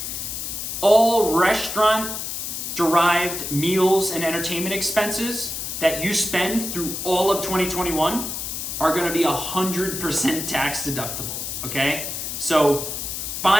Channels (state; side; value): noise; left; hiss, 5 dB below the sound